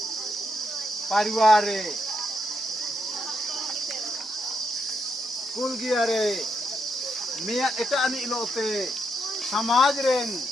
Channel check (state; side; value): normal; both; correlation 0.80